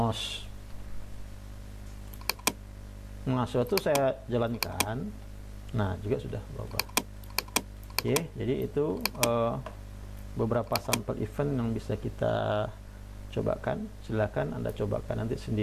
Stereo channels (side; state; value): both; identical; correlation 1.00